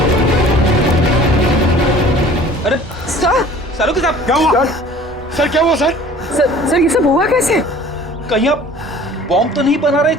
अरे सर, सालू साहब क्या हुआ? सर क्या हुआ सर? सर ये सब हुआ कैसे? कहीं आप बॉम्ब तो नहीं बना रहे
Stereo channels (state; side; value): normal; both; correlation 0.48